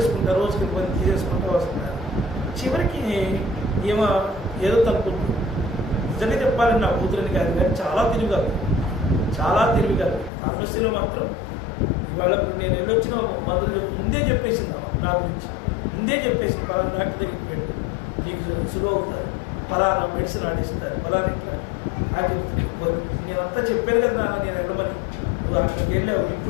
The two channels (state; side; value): drops out; right; at 10.3 s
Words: రోజుకి కొంతమంది తీసేసుకుంటూ వస్తున్నారు. చివరికి ఏదో తప్పుతుంది. నిజంగా చెప్పాలని నా కూతురని కాదు, కానీ చాలా తెలివిగా ఫార్మసీలో మాత్రం ఇవాళ నేను వెళ్ళొచ్చిన మందులు ముందే చెప్పేసింది నా గురించి. ముందే చెప్పేసింది, పలానా డాక్టర్ దగ్గరికి పెట్టి నీకు సులువు అవుతారు, పలానా మెడిసిన్ ఆడిస్తారు, పలానా ఇట్లా అది నేనంతా చెప్పాను కదా నాన్న, నేను వెళ్ళమని, నువ్వు అక్కడికి వెళ్ళావు,